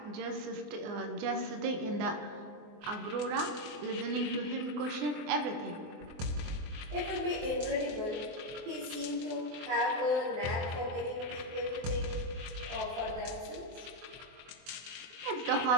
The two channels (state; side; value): late; left; 23 ms